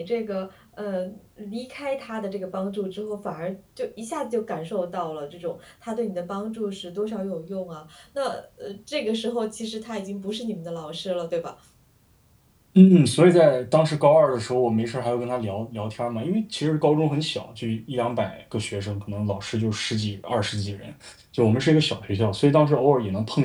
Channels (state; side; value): identical; both; correlation 1.00